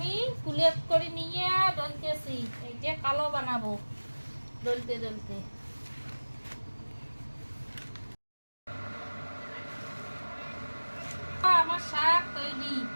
কুলেপ করে নিয়ে ডলতেছি, এই যে কালো বানাবো ডলতে ডলতে। আমার শাক তৈরি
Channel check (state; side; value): inverted; both; correlation -1.00